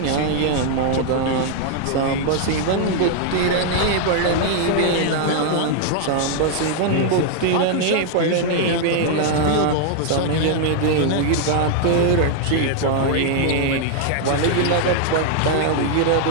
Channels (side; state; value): both; different; correlation 0.00